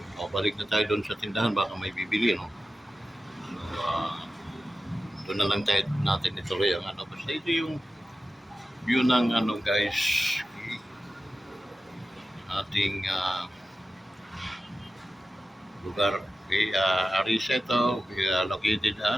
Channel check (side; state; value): both; normal; correlation 0.93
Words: Balik na tayo doon sa tindahan, baka may bibili, no? So, doon na lang tayo natin ituloy ang ano. Basta ito yung view ng ano guys, ating lugar. Okay, Arisa ito, located